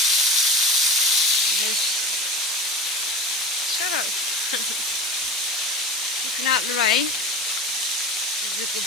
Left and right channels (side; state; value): both; normal; correlation 0.31